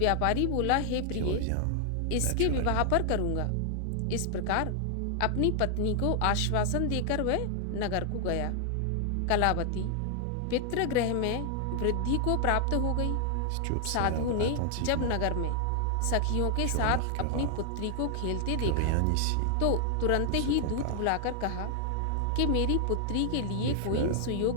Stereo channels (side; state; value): both; different; correlation 0.00